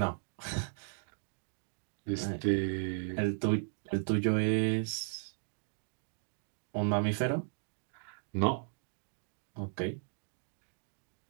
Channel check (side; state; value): left; silent; digital silence